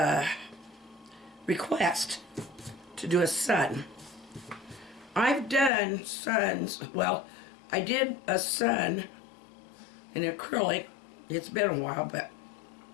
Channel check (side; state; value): right; drops out; at 5.7 s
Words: request to do a sun. I've done suns, well, I did a sun in acrylic. It's been a while,